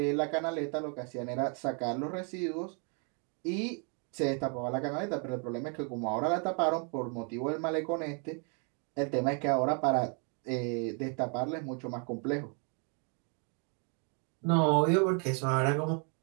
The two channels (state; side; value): quieter; left; 39.0 dB